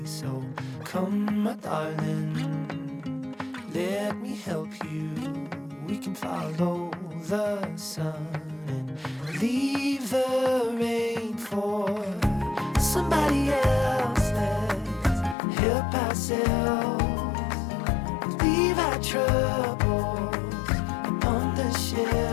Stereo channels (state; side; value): drops out; right; at 15.4 s